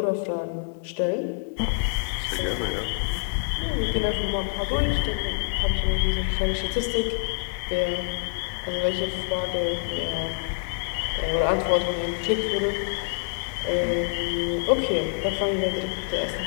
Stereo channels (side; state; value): right; silent; digital silence